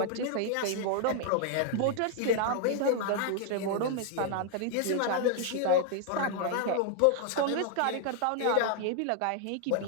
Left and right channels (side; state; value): both; different; correlation 0.00